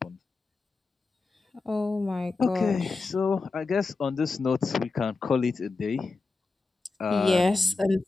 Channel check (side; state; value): right; quieter; 3.8 dB